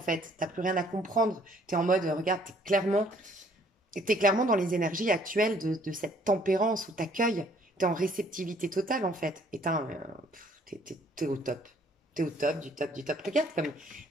T'as plus rien à comprendre. T'es en mode, regarde, t'es clairement dans les énergies actuelles de cette tempérance où t'accueilles. T'es en réceptivité totale, en fait. Et t'es au top. T'es au top, du top, du top. Regarde comme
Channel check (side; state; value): both; normal; correlation 0.61